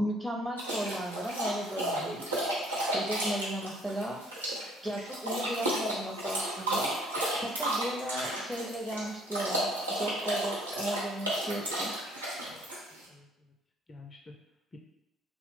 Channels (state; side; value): normal; both; correlation 0.59